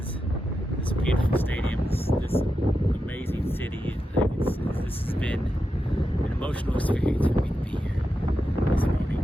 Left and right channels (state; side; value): normal; both; correlation 0.88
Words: this beautiful stadium, this amazing city. This has been an emotional experience for me to be here this morning,